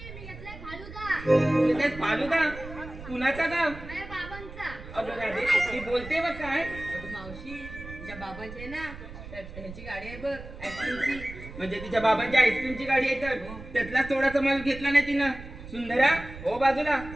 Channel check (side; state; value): right; noise; rumble, 13 dB below the sound